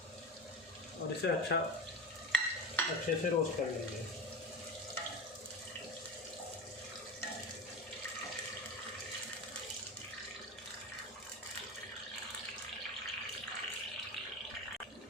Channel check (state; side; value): normal; both; correlation 0.26